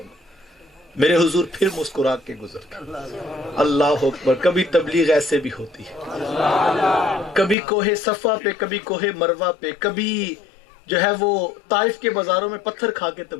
گا۔ میرے حضور پھر مسکرا کے گزر گئے۔ اللہ اکبر، کبھی تبلیغ ایسے بھی ہوتی ہے، کبھی کوہ صفا پہ، کبھی کوہ مروہ پہ، کبھی جو ہے وہ طائف کے بازاروں میں پتھر کھا کے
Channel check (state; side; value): drops out; right; at 7.6 s